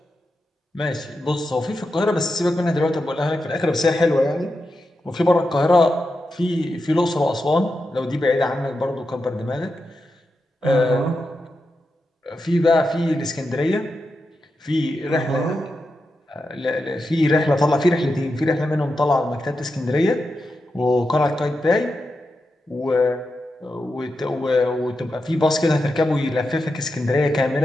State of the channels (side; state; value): both; normal; correlation 0.88